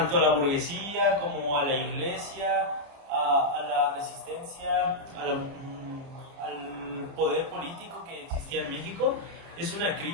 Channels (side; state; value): left; late; 30 ms